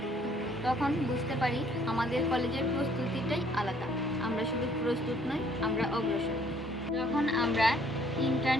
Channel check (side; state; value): both; normal; correlation 0.62